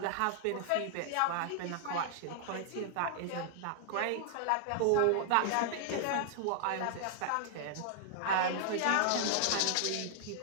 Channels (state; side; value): different; both; correlation -0.01